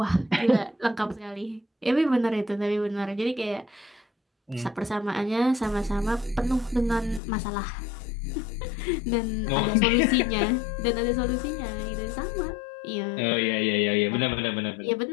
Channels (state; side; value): drops out; right; at 7.2 s